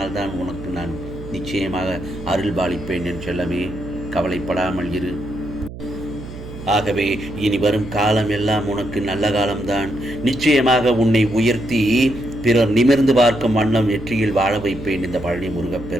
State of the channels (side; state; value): right; noise; hum, 12 dB below the sound